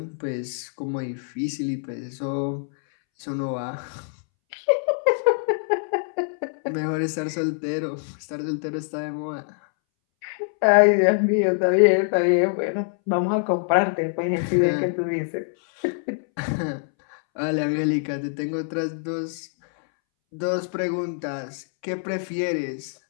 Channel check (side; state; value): right; silent; 62 dB below the other